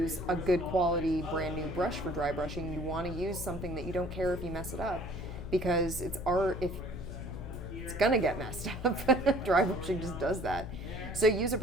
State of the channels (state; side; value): noise; left; hum, 9 dB below the sound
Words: a good quality brand new brush for dry brushing. You want to use something that you don't care if you mess it up because it's gonna get messed up. Dry brushing just does that. So use a